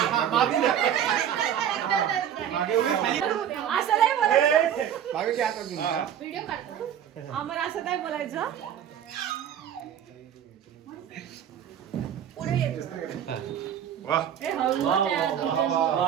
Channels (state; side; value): quieter; left; 9.6 dB